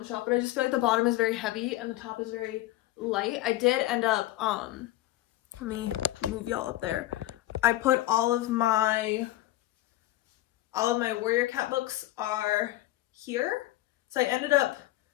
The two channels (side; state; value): right; quieter; 16.0 dB